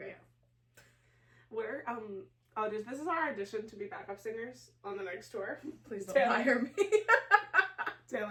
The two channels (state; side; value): identical; both; correlation 1.00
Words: Yeah. We're, this is our audition to be backup singers on the next tour. Please don't hire me.